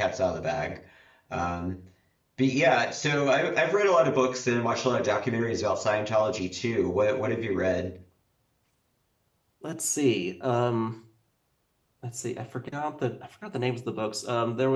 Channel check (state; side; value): identical; both; correlation 1.00